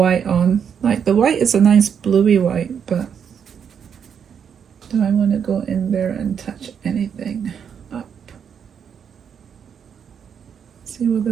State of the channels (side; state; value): left; quieter; 7.6 dB